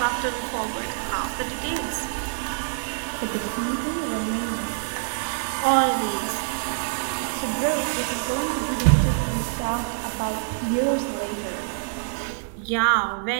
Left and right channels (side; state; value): left; silent; digital silence